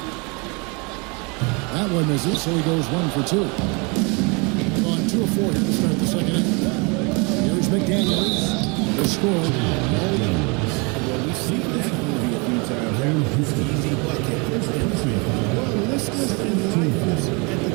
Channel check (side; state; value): left; quieter; 30.7 dB